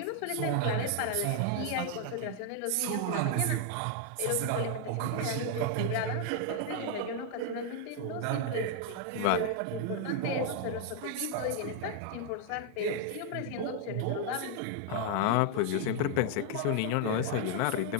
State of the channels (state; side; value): different; both; correlation 0.00